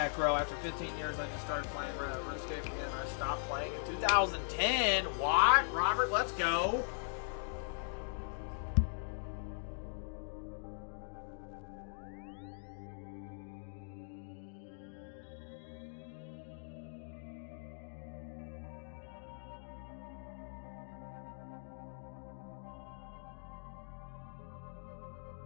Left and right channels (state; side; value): silent; right; digital silence